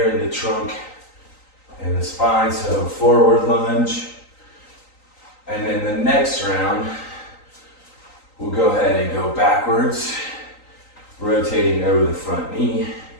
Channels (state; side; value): late; right; 3.9 ms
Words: in the trunk and the spine. So forward lunge. And then the next round, we'll go ahead and go backwards, rotating over the front knee.